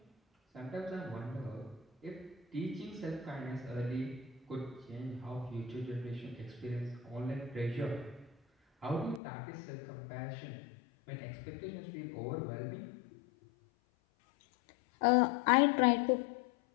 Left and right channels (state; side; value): drops out; right; at 9.2 s